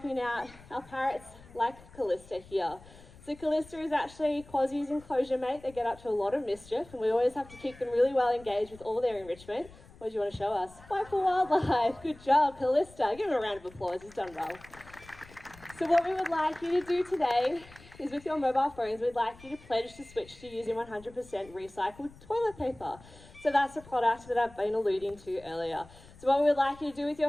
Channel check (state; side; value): noise; left; rumble, 22 dB below the sound